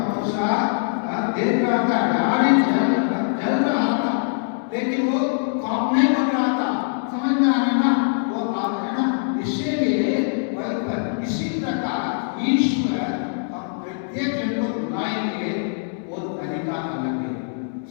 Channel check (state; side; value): silent; right; 64 dB below the other